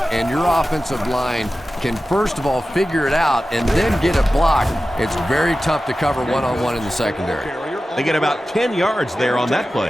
and your offensive line can first of all figure it out and then get it blocked, it's very tough to cover one-on-one in the secondary. They get about 10 yards there on that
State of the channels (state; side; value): normal; both; correlation 0.94